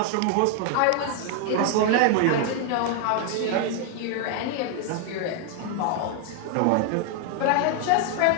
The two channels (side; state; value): both; different; correlation 0.00